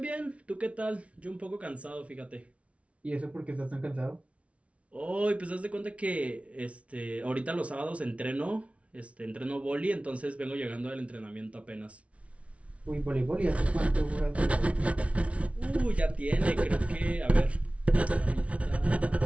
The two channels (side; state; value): left; late; 0.063 ms